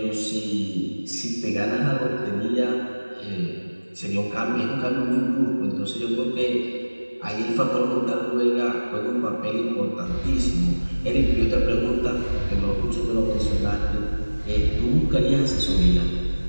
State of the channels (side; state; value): both; inverted; correlation -1.00